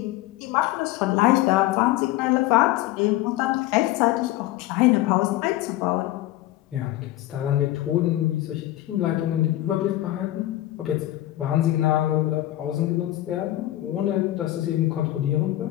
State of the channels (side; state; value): right; quieter; 15.5 dB